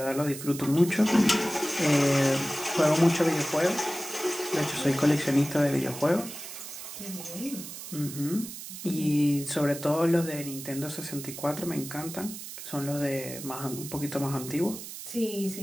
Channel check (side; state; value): right; noise; hiss, 11 dB below the sound